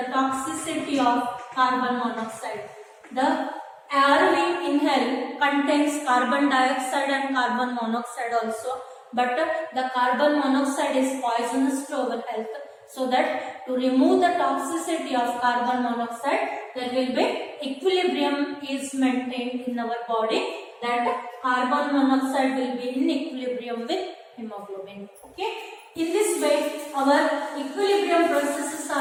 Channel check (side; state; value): both; identical; correlation 1.00